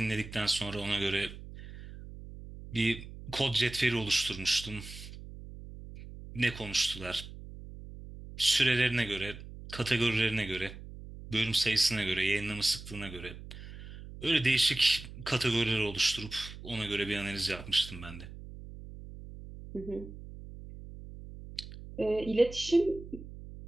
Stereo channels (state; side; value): noise; right; hum, 13 dB below the sound